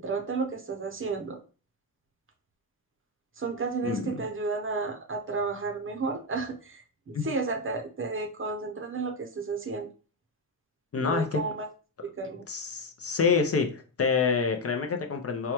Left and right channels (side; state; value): both; normal; correlation 0.07